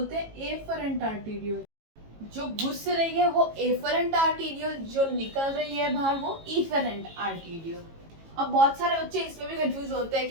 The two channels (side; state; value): left; late; 18 ms